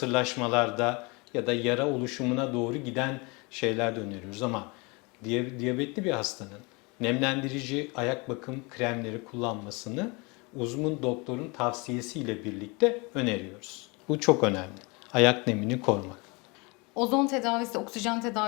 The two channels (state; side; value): quieter; right; 28.0 dB